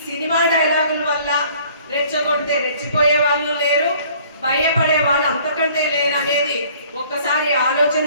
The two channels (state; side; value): inverted; both; correlation -0.55